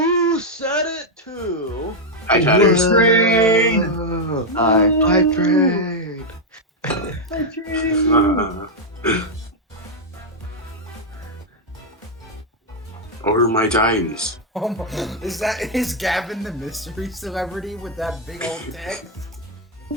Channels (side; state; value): both; normal; correlation 0.00